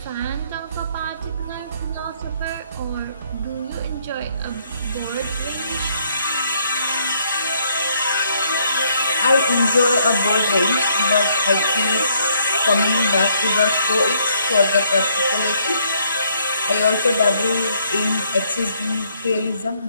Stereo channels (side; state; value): both; inverted; correlation -0.69